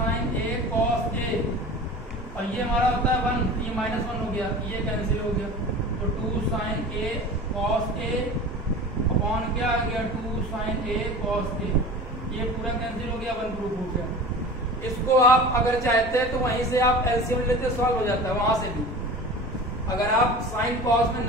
A cos A, और ये हमारा होता है 1, ये माइनस 1 हो गया, ये कैंसिल हो गया तो 2 sign A cos A upon क्या आ गया 2 साइन ए कॉस ए, ये पूरा कैंसिल हो गया 1 प्रूफ हो गया। इसको आप अगर चाहते हैं तो वहीं से आप एलसीएम लेते सॉल्व हो जाता है, वहां से भी अगर आप साइन कॉस में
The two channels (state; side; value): normal; both; correlation 0.36